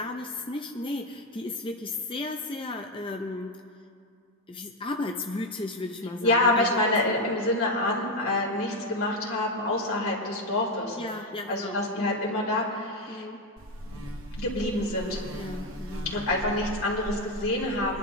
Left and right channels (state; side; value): normal; both; correlation 0.08